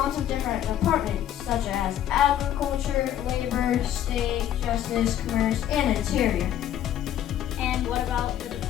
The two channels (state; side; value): quieter; right; 11.1 dB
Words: of different departments such as agriculture, labor, state, justice, commerce, and interior. And what about the